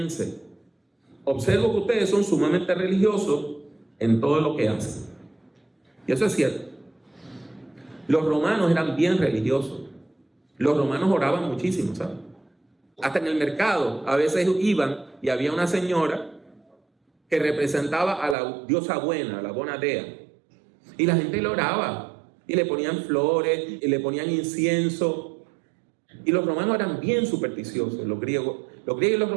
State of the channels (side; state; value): left; drops out; at 18.4 s